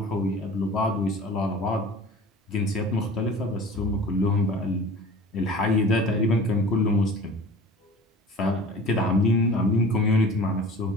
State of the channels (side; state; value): both; normal; correlation 0.42